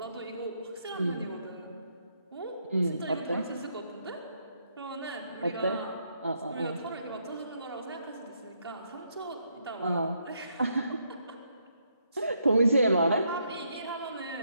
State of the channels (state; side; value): inverted; both; correlation -0.76